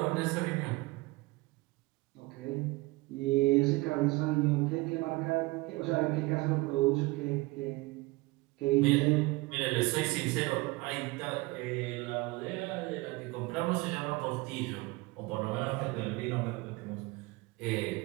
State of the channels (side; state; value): left; quieter; 22.8 dB